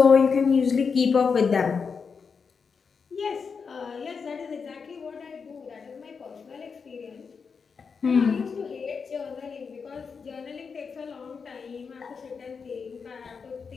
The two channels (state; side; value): quieter; right; 5.6 dB